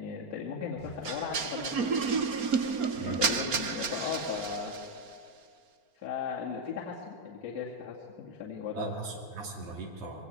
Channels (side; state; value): left; late; 4.3 ms